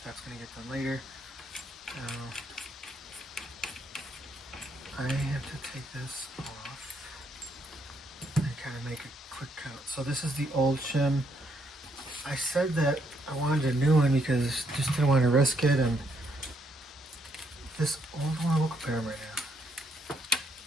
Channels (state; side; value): normal; both; correlation 0.73